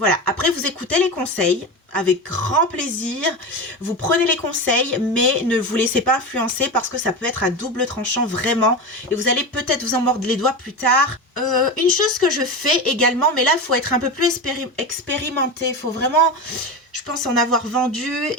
Après, vous écoutez les conseils avec grand plaisir, vous prenez les conseils, mais ne vous laissez pas influencer parce que ça peut être à double tranchant vraiment et vous allez peut-être vous en mordre les doigts plus tard. Une chose que je fais également, mais là il faut être un peu plus expérimenté, il faut vraiment, je Je pense en avoir vendu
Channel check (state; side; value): normal; both; correlation 0.22